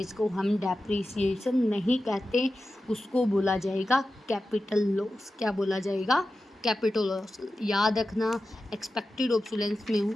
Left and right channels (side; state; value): both; normal; correlation 0.93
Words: को हम डेप्रिसिएशन नहीं कहते, उसको बोला जाएगा कैपिटल लॉस। क्या बोला जाएगा? Capital loss. याद रखना, एक्सपेक्टेड ऑब्सोलेंस में